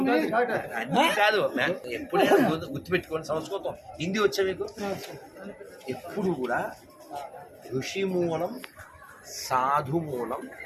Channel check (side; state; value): both; identical; correlation 1.00